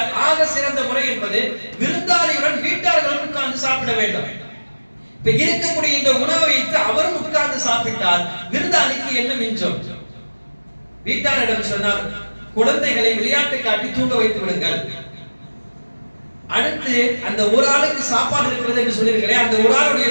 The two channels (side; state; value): both; inverted; correlation -1.00